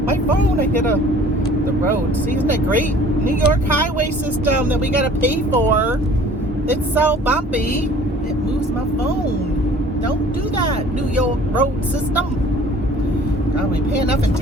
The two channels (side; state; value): both; normal; correlation 0.50